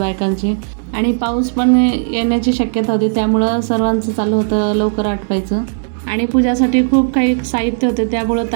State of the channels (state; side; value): silent; left; 69 dB below the other